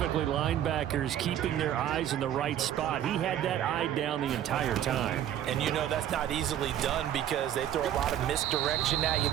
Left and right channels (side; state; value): left; quieter; 11.0 dB